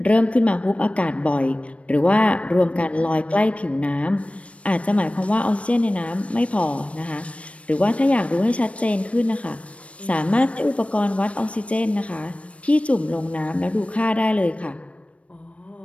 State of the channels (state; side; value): late; right; 0.063 ms